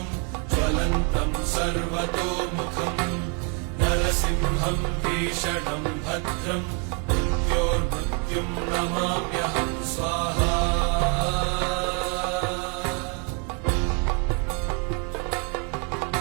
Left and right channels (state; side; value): quieter; left; 36.8 dB